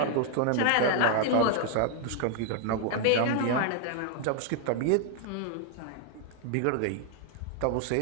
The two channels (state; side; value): different; both; correlation 0.00